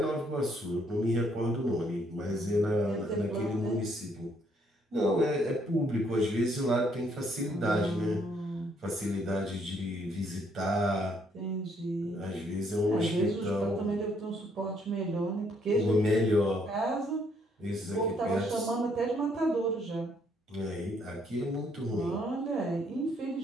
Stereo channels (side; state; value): both; normal; correlation 0.69